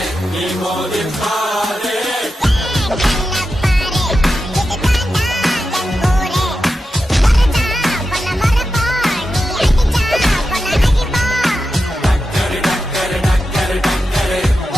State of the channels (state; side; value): normal; both; correlation 0.90